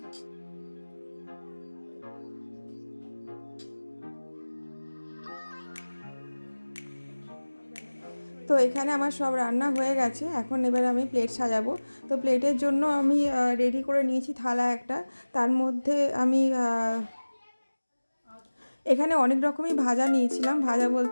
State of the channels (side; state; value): both; inverted; correlation -1.00